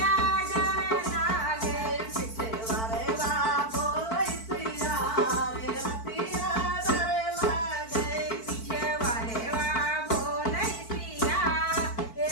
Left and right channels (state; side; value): late; right; 4.5 ms